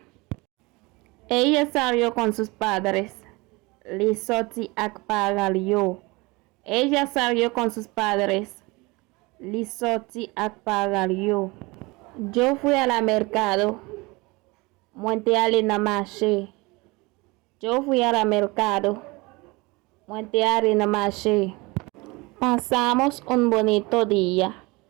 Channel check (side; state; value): left; quieter; 24.5 dB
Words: Ella salió con sus padres. Li sorti ak paralyo. Ella salió con sus padres. Li sorti ak paralyo. Yo fui a la mercado. Muente ale na marché. Yo fui a la mercado. Muente ale na marché. Pasamos un bonito día.